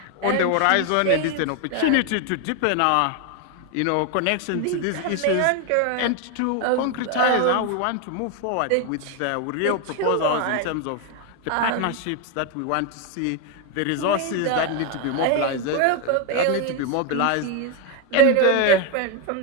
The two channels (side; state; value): both; different; correlation 0.01